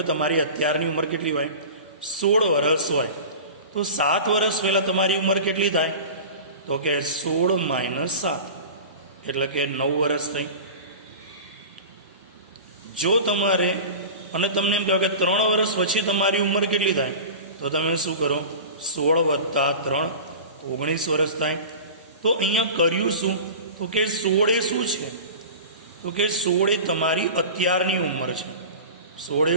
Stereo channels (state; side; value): inverted; both; correlation -0.34